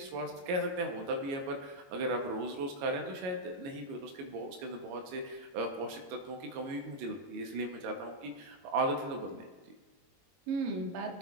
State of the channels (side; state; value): left; late; 22 ms